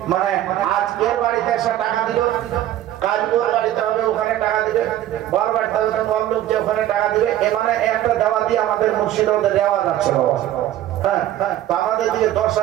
মানে আজ এর বাড়িতে এসে টাকা দিল, কাল ওর বাড়িতে হবে ওখানে টাকা দিবে, বর বাড়িতে হবে বর লোক যে ওখানে টাকা দিবে। এ মানে একটা দেওয়া দিয়ে আমাদের মুর্শিদাবাদে দেওয়া যাচ্ছে বাবা। হ্যাঁ, তো আমাদের দিকে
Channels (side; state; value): left; quieter; 12.9 dB